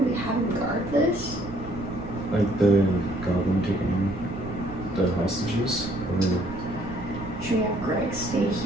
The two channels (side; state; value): right; noise; rumble, 13 dB below the sound